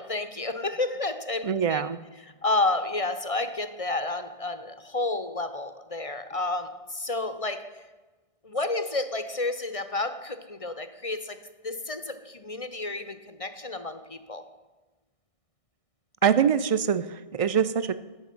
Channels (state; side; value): late; right; 1.6 ms